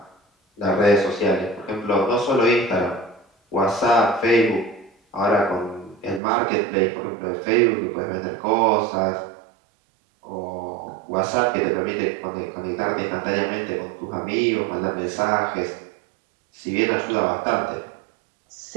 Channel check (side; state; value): left; drops out; at 6.2 s